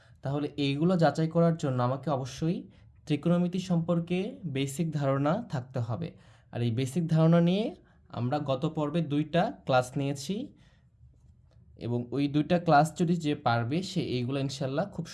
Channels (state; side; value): identical; both; correlation 1.00